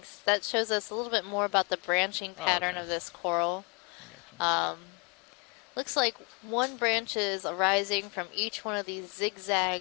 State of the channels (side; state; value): right; quieter; 33.1 dB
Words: That shows us a little bit more about the branching Oh, pattern okay. of this coral. I gotcha. Looks like one branch is arising from each one of these